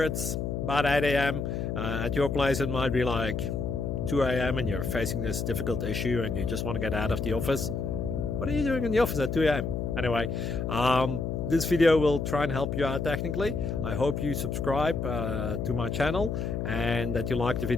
it's about 8 a.m. At your place it might be like 2 a.m. and you're facing this difficult issue and you just want to get out of the office. What are you doing in the office at 2 a.m.? Anyway, this video will try and help you out technically. I hope you subscribe to my channel and that you like the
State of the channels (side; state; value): left; noise; hum, 2 dB below the sound